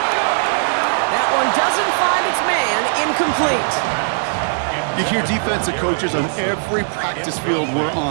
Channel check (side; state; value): left; silent; 58 dB below the other